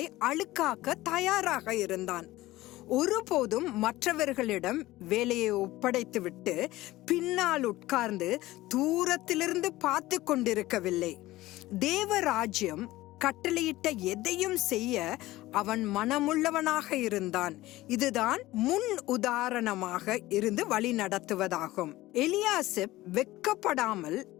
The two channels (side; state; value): right; quieter; 17.5 dB